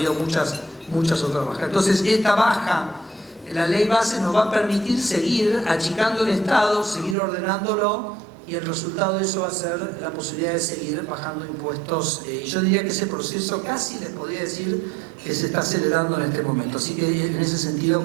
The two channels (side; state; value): left; drops out; at 7.2 s